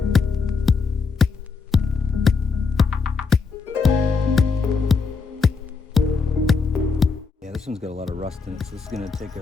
This one's got a lot of rust in it, so this is going to take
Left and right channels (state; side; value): quieter; right; 4.9 dB